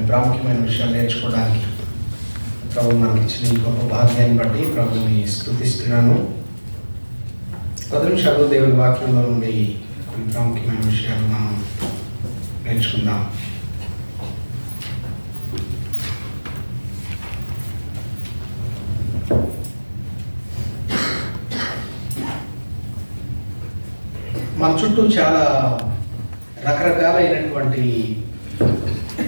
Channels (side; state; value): both; inverted; correlation -1.00